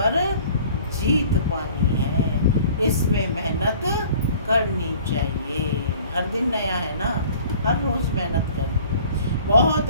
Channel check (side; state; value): both; inverted; correlation -0.50